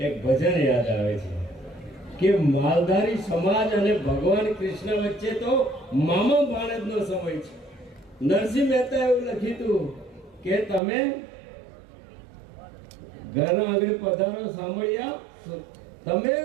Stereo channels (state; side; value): drops out; left; at 10.8 s